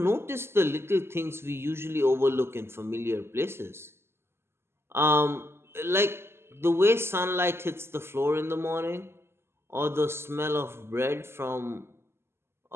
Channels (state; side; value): late; left; 0.12 ms